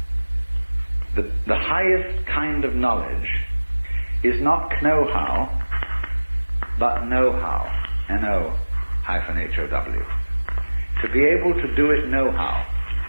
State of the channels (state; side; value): inverted; both; correlation -1.00